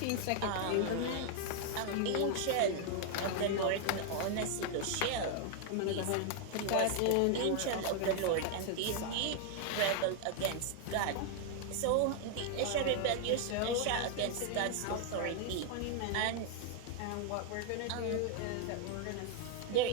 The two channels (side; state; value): both; different; correlation 0.00